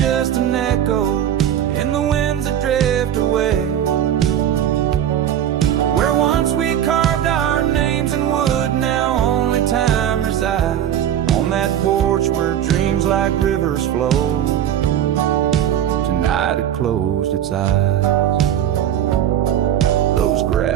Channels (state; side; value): quieter; left; 10.4 dB